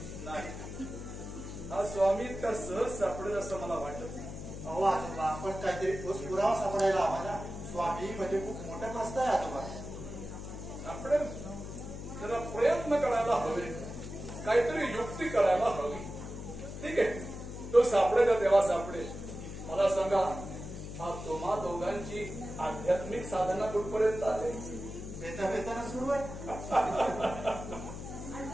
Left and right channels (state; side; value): noise; left; hum, 9 dB below the sound